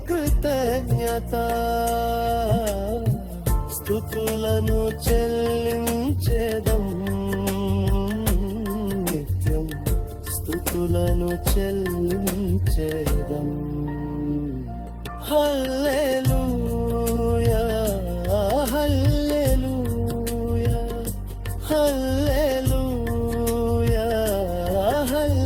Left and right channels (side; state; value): both; identical; correlation 1.00